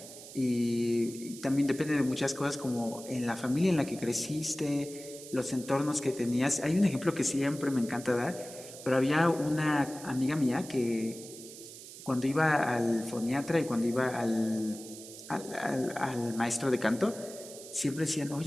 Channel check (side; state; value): right; noise; hiss, 15 dB below the sound